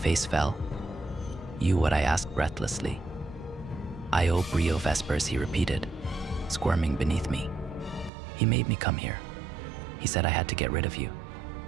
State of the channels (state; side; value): drops out; left; at 8.1 s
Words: fell. You, what I asked breathlessly. Io Brio Vespers, he repeated, squirming beneath me. He made me come here. He said I had to get rid of you.